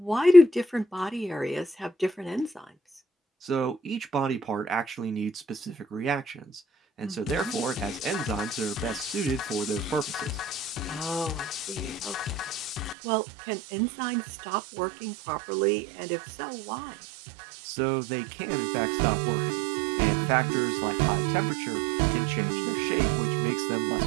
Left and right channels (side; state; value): left; drops out; at 13.0 s